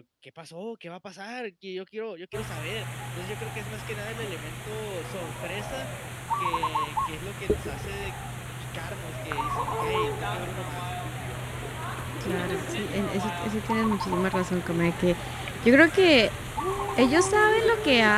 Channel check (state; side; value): identical; both; correlation 1.00